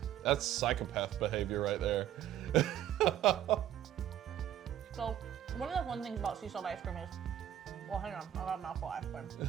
psychopath behavior right there. So, one of the fun things about sea salt ice cream is, well, hang on, I got a mouthful of ice cream.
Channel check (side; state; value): left; quieter; 11.2 dB